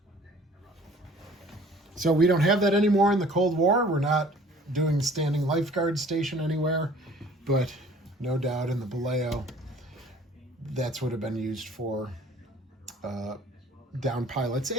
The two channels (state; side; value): normal; both; correlation 0.52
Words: So we don't have that anymore in the Cold War. We're not doing standing lifeguard station anywhere, but no doubt in the Baleo, that's what have been used for down pilots